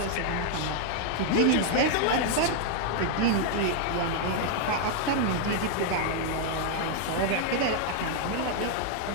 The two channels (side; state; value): both; different; correlation 0.00